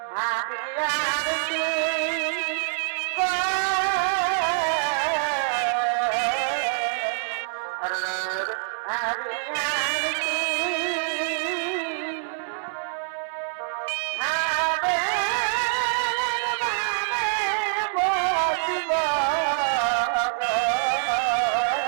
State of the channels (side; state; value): left; silent; 61 dB below the other